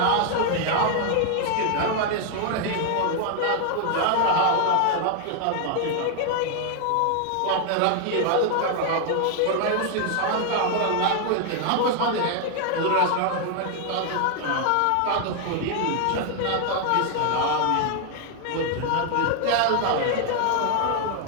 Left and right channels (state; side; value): different; both; correlation 0.00